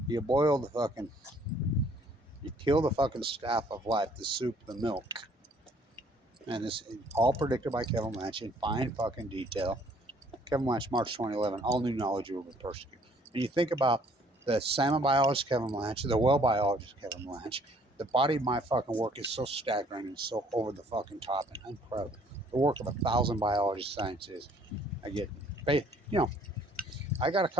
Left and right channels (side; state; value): both; normal; correlation 0.61